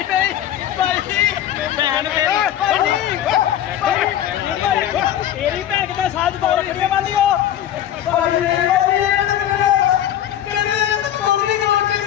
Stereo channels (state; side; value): quieter; right; 11.3 dB